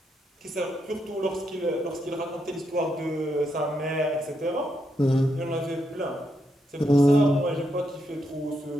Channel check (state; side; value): normal; both; correlation 0.80